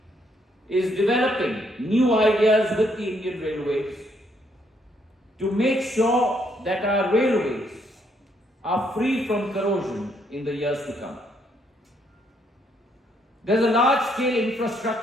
is developing new ideas with the Indian Railways to make sure that our railways are free from corrosion in the years to come. There's a large-scale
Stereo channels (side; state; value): both; normal; correlation 0.72